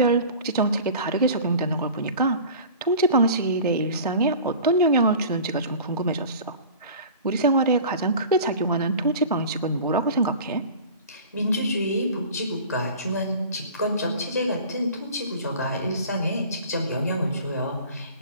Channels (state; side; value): inverted; both; correlation -0.40